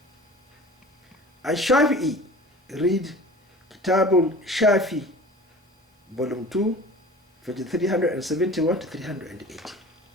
Al-Shafi'i, read Kitabul Shafi, volume 2, page 371 to 380.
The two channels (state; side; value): normal; both; correlation 0.41